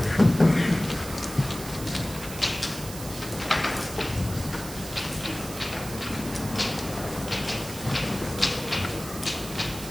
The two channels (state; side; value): noise; right; hiss, 12 dB below the sound